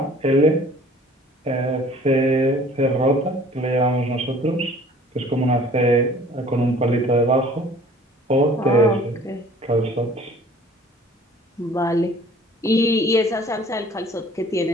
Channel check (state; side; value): normal; both; correlation 0.51